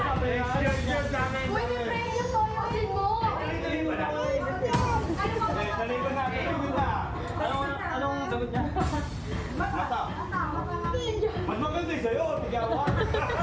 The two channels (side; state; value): both; identical; correlation 1.00